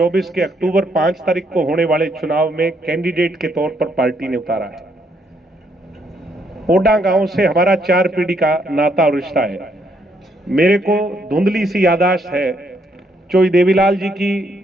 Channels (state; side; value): normal; both; correlation 0.73